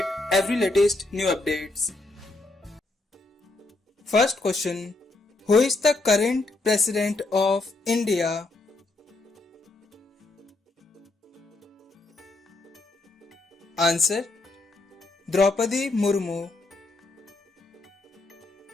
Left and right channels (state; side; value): quieter; right; 3.1 dB